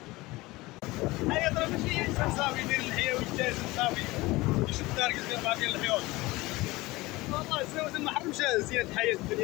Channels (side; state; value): right; quieter; 20.8 dB